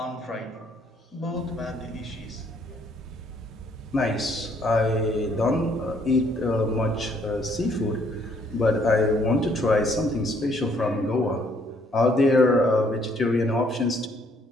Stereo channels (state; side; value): normal; both; correlation 0.66